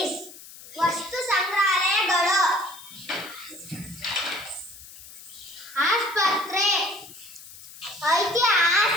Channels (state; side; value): noise; left; hiss, 17 dB below the sound